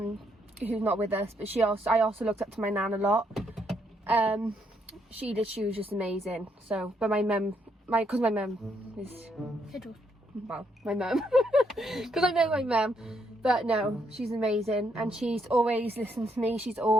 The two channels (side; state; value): both; normal; correlation 0.74